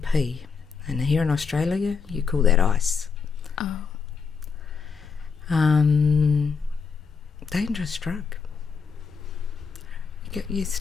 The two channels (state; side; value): quieter; right; 5.7 dB